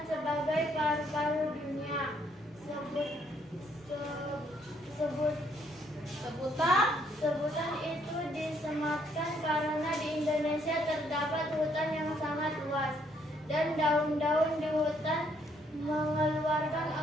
sebagai paru-paru dunia. Sebutan itu disematkan karena di Indonesia terdapat hutan yang sangat luas dan daun-daun di hutan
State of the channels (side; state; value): both; normal; correlation 0.69